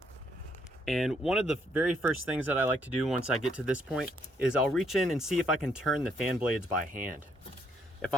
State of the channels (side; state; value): both; normal; correlation 0.72